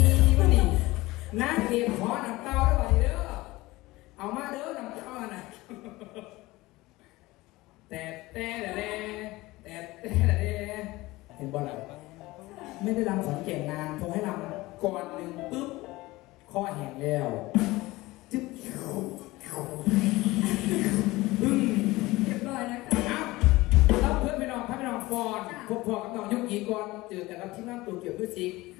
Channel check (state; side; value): quieter; right; 19.9 dB